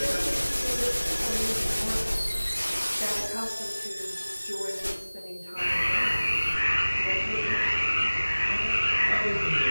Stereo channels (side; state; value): both; inverted; correlation -1.00